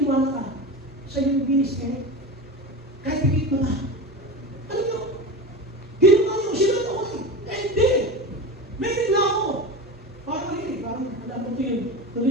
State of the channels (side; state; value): both; normal; correlation 0.26